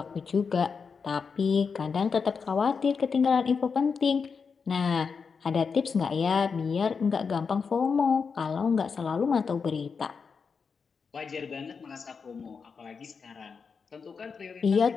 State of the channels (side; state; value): right; quieter; 5.5 dB